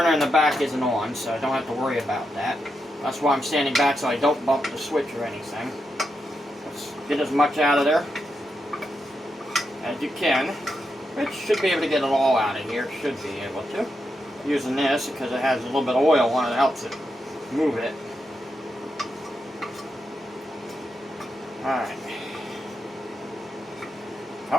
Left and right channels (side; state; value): both; normal; correlation 0.85